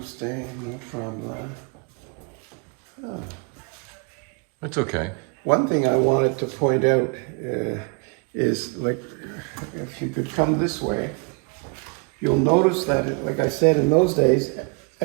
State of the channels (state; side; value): quieter; left; 32.9 dB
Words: Mont-Tremblant. Oh. That's okay. One thing I wanted to point out is, like, if you could come this way, you'll notice that, like I said, in those days,